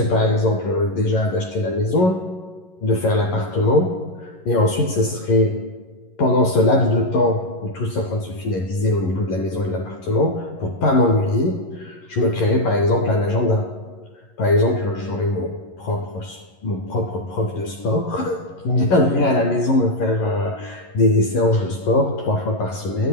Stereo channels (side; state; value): right; late; 11 ms